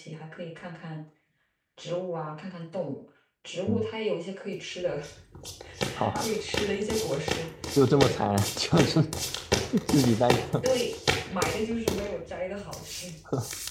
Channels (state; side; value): identical; both; correlation 1.00